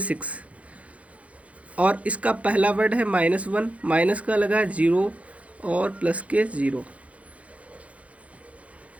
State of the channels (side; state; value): left; late; 0.065 ms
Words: और इसका पहला वर्ड है -1, माइनस का लगा 0 और प्लस के 0,